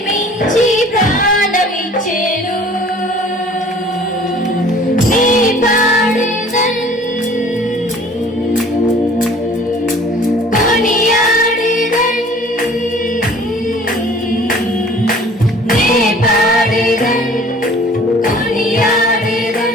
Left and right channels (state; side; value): normal; both; correlation 0.50